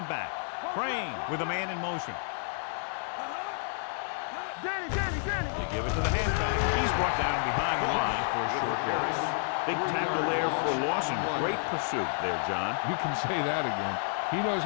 back. Crane with a man in motion. They give it to the halfback. He's brought down behind the line for a short loss. Big tackle there for loss and great pursuit there, John. You can say that again. He knows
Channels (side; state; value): right; silent; digital silence